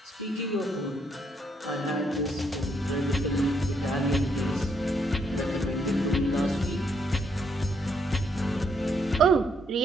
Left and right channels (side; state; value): both; normal; correlation 0.73